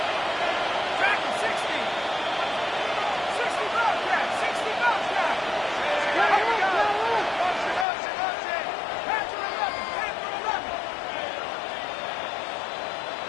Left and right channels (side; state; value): right; drops out; at 7.9 s